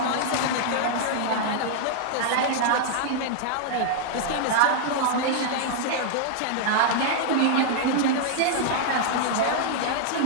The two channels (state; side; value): different; both; correlation 0.00